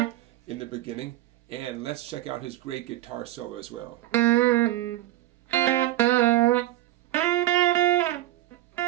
the beginning, and let's check out his great guitar solo as well. A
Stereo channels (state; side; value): quieter; left; 15.2 dB